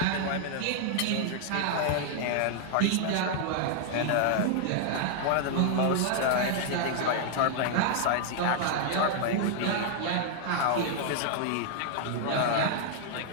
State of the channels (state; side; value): different; both; correlation -0.01